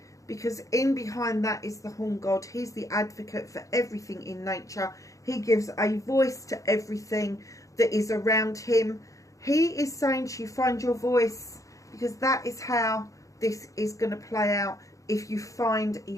because in behind that is the Horn God. He's the advocate for everything in nature. He gives a voice to everything that is around him. He is saying to you, find your voice, because that is how this is going to play out if you find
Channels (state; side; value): late; right; 0.16 ms